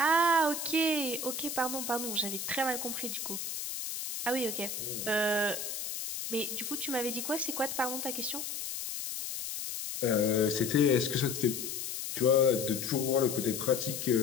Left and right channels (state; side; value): noise; left; hiss, 5 dB below the sound